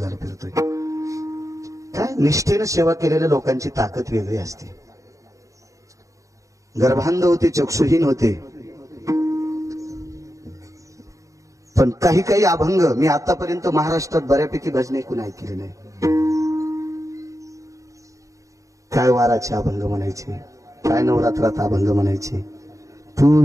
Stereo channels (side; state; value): left; late; 0.16 ms